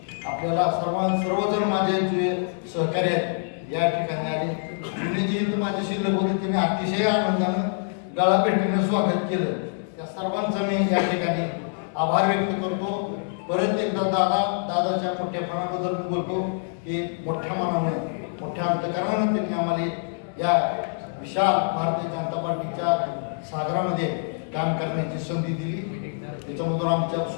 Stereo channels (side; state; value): right; silent; digital silence